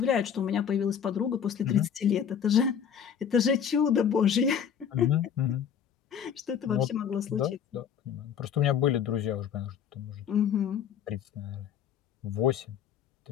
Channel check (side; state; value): right; quieter; 8.1 dB